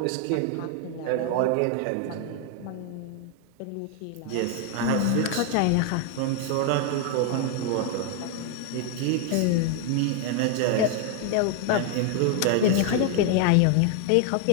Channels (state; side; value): different; both; correlation 0.01